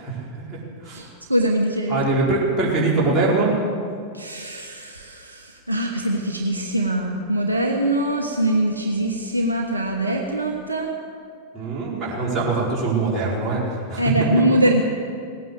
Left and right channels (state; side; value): inverted; both; correlation -0.37